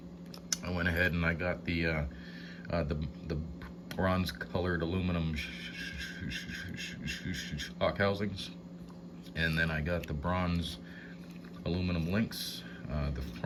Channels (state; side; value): identical; both; correlation 1.00